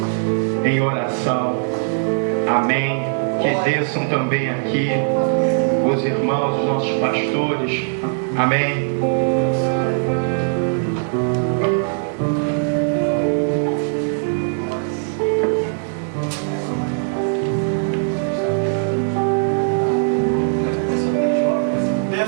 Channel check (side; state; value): left; silent; 66 dB below the other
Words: em oração. Amém? Que desçam também aqui os irmãos, os nossos pastores. Amém?